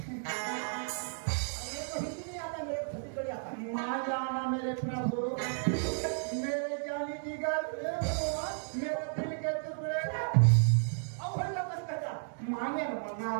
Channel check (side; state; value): left; silent; digital silence